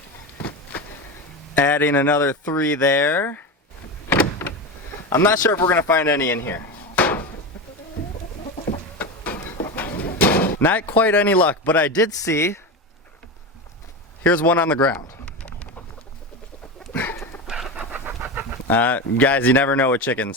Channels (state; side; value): normal; both; correlation 0.20